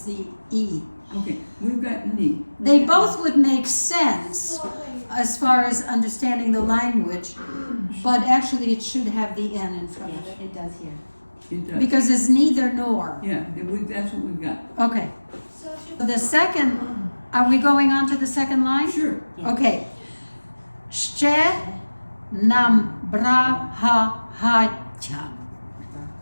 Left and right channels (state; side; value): inverted; both; correlation -1.00